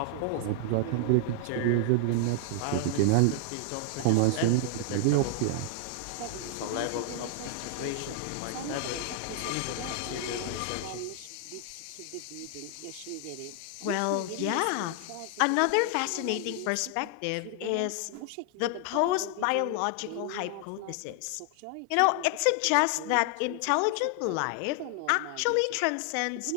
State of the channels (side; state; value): both; different; correlation 0.00